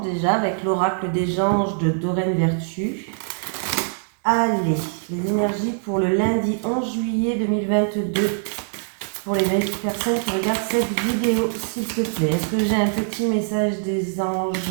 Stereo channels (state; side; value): silent; left; digital silence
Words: déjà avec l'oracle des anges de Doreen Vertu. Allez, les énergies pour le lundi 11 juillet 2022. Pour les personnes qui regardent cette vidéo, s'il te plaît. Est-ce que j'ai un petit message des